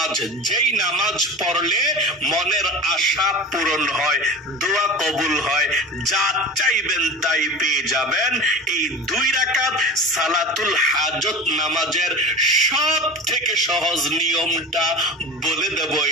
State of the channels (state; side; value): normal; both; correlation 0.31